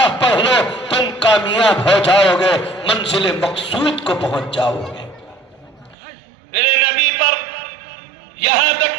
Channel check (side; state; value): left; drops out; at 6.0 s